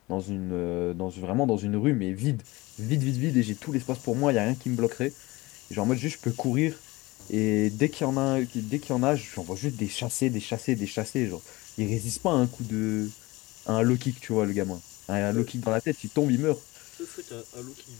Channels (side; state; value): right; quieter; 21.4 dB